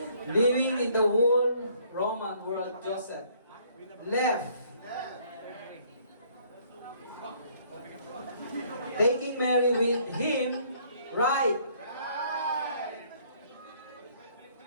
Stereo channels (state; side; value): inverted; both; correlation -0.62